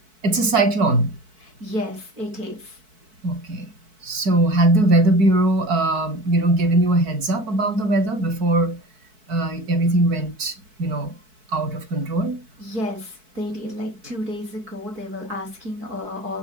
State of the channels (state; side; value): late; left; 4.6 ms